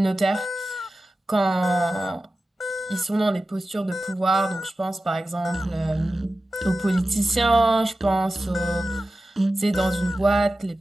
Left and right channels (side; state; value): both; normal; correlation 0.94